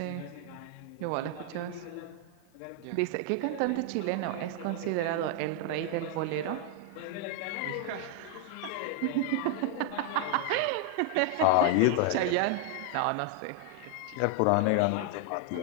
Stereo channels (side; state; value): both; different; correlation 0.00